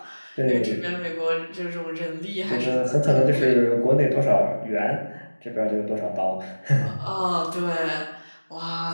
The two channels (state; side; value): inverted; both; correlation -1.00